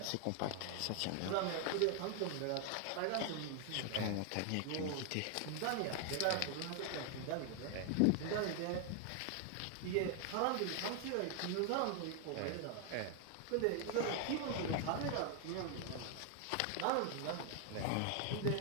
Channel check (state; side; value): different; both; correlation 0.00